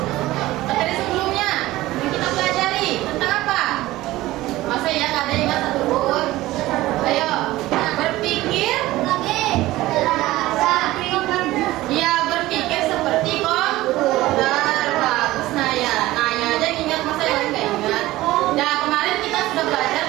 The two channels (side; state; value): left; quieter; 17.3 dB